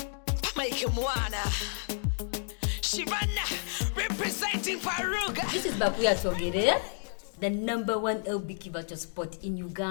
Mike Mwana Shivana representing Faruga. This is BaQueer Twogere, the #1 LBQ virtual spot in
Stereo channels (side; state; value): right; silent; 57 dB below the other